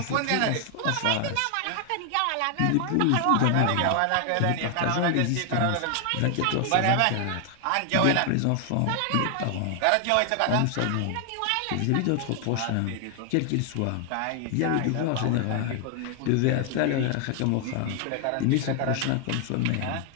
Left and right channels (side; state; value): both; different; correlation 0.00